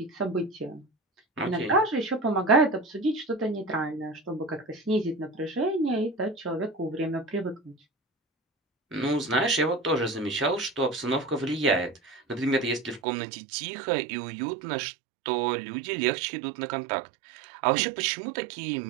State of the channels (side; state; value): left; drops out; at 13.0 s